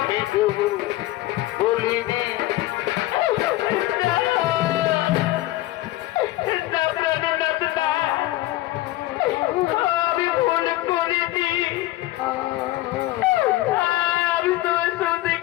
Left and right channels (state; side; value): quieter; right; 16.9 dB